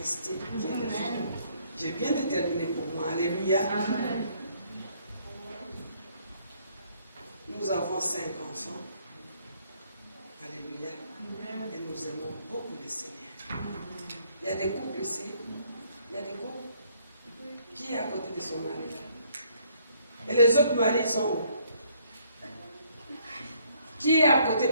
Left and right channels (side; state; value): both; inverted; correlation -0.66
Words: J'ai bien déterminé pour moi. Alléluia. Amen. Nous avons 5 enfants. Alléluia. Amen. Et nous aimons beaucoup le Seigneur. Il y y a des couples ici. Il y a des couples. Qui est à côté de son mari là? Et les autres maris sont où? Qui est à côté?